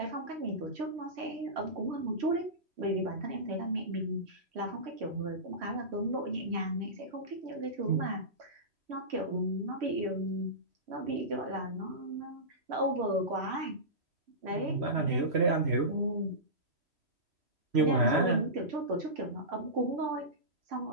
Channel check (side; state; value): left; late; 3.1 ms